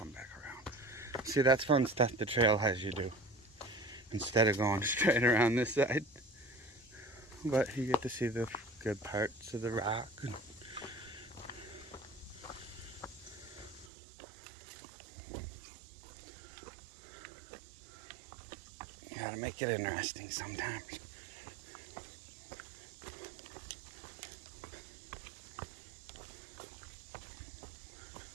back around. See, that's fun stuff the trail has you do. Instead of going straight around this side. But you get to see the good parts of the rock. You gotta make it interesting sometimes.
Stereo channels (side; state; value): left; drops out; at 13.9 s